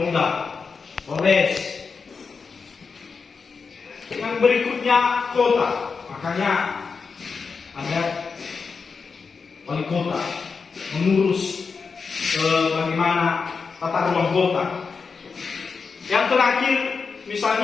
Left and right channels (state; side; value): quieter; right; 5.1 dB